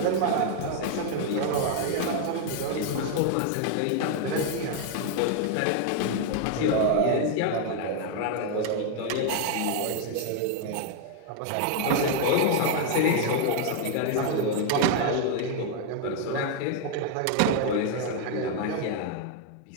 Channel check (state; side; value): different; both; correlation 0.00